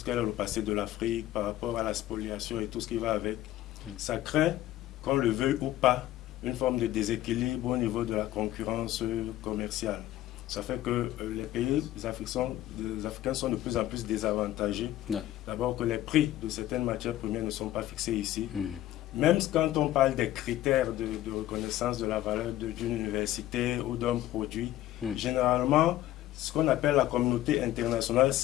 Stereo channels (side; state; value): right; quieter; 14.2 dB